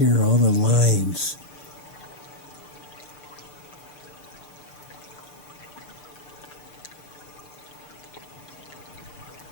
are all the lines.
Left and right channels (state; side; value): late; right; 6.7 ms